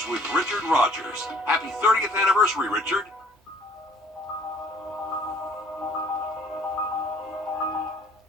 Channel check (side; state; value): both; normal; correlation 0.55